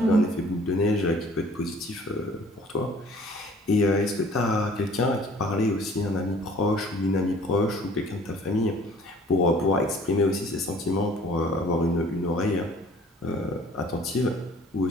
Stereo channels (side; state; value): both; normal; correlation 0.52